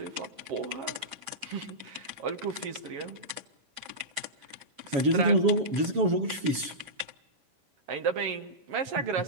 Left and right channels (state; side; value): late; left; 7.2 ms